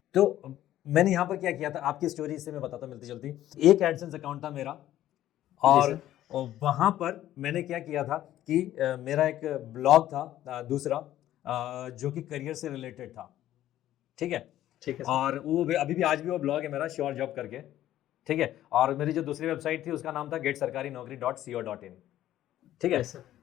तो मैंने यहाँ पर क्या किया था, आपकी स्टोरी से मैं बताता मिलती जुलती। एक एडसेंस अकाउंट था मेरा और वहाँ पर मैंने क्या किया था कि मेरा एक ब्लॉग था दूसरा, जो कि करियर से रिलेटेड था, ठीक है। ठीक है सर। और वो अभी भी आज भी वो ब्लॉग है मेरा, श्योर जॉब करके, ठीक है। और मेरी जो दूसरी वेबसाइट थी उसका नाम था GetSarkariNaukri.co.in, ठीक है। Yes, sir.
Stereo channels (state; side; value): quieter; right; 13.1 dB